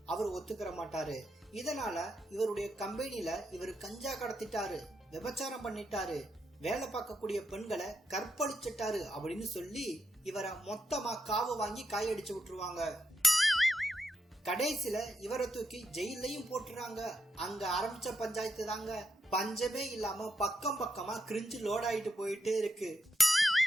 அவர் ஒத்துக்கிற மாட்டாரு. இதனால இவருடைய கம்பெனில இவர் கஞ்சா கடத்திட்டாரு, விபச்சாரம் பண்ணிட்டாரு, வேலை பார்க்கக்கூடிய பெண்களை கற்பழிச்சிட்டாரு அப்படின்னு சொல்லி இவரை மொத்தமா காவு வாங்கி காயடிச்சு விட்டுருவாங்க. கடைசியில இவரை தூக்கி ஜெயிலையும் போட்டுறாங்க. அங்க ஆரம்பிச்ச பஞ்சாயத்து தாங்க பஞ்சமே இல்லாம பக்கம் பக்கமா கிரிஞ்சு லோட் ஆயிட்டு போயிட்டே இருக்கு.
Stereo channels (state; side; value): normal; both; correlation 0.83